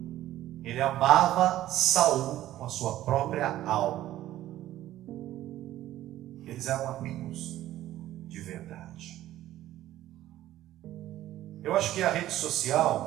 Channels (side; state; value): left; quieter; 13.9 dB